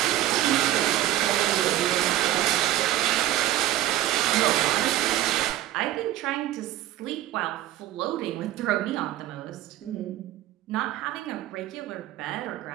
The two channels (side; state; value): left; quieter; 14.2 dB